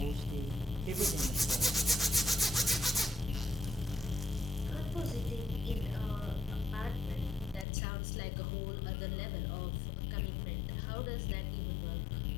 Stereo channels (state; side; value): drops out; right; at 7.7 s